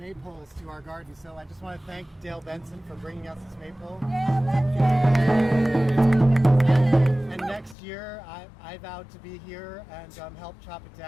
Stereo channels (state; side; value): drops out; right; at 7.8 s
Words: to our garden. So I just want to thank Dale Benson for bringing us this maypole. And next year I vowed to be here and help chop it